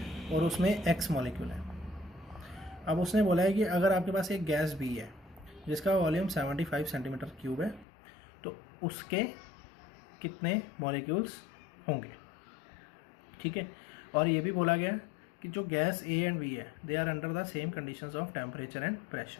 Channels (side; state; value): right; drops out; at 7.9 s